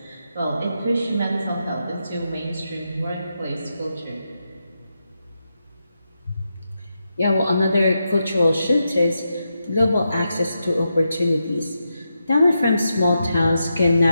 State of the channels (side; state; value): both; inverted; correlation -0.86